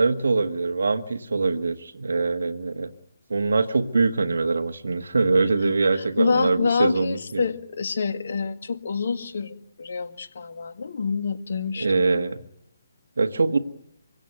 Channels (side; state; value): both; inverted; correlation -0.90